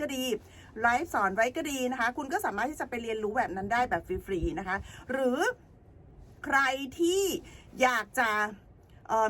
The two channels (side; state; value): both; identical; correlation 1.00